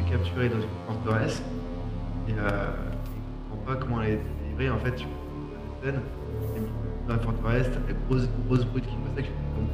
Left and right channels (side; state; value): both; identical; correlation 1.00